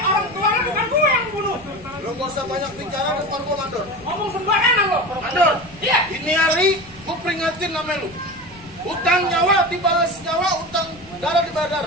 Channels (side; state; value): left; noise; rumble, 23 dB below the sound